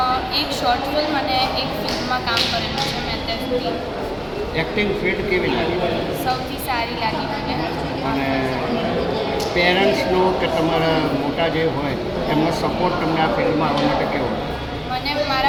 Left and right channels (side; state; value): both; identical; correlation 1.00